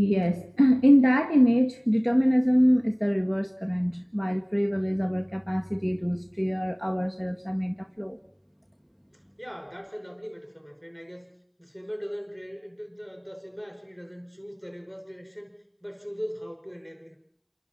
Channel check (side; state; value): both; identical; correlation 1.00